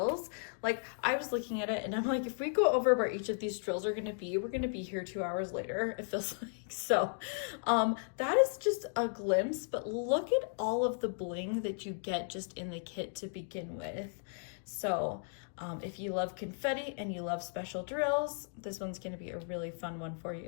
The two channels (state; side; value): silent; right; digital silence